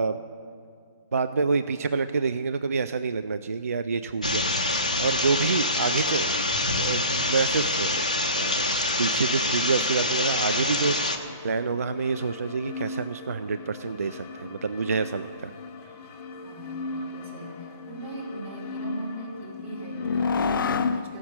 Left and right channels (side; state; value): both; inverted; correlation -0.47